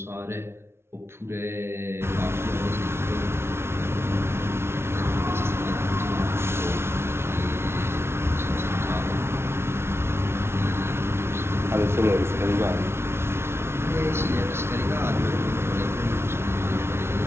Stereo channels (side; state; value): left; late; 0.12 ms